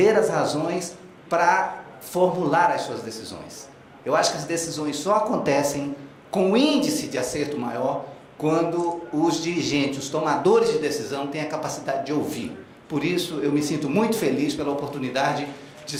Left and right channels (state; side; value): identical; both; correlation 1.00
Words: as razões, para formular as suas decisões. Eu acho que as decisões só acontecem com índice de acerto maior quando os dirigentes, os tomadores de decisão, têm a capacidade de ouvir. Por isso, eu me sinto muito feliz pela oportunidade de